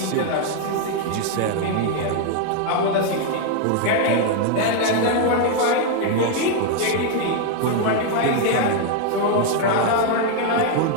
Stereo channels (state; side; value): different; both; correlation 0.00